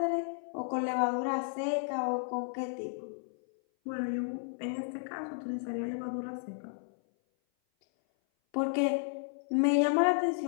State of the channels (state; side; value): silent; right; 56 dB below the other